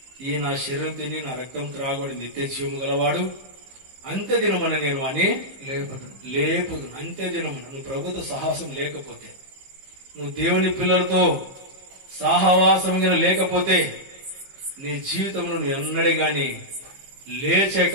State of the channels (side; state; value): left; late; 16 ms